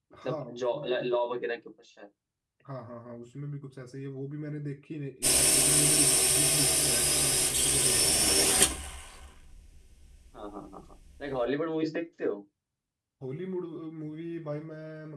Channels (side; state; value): both; identical; correlation 1.00